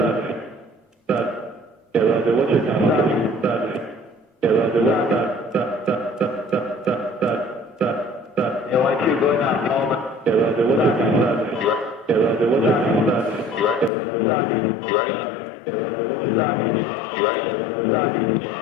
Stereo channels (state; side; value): drops out; right; at 13.9 s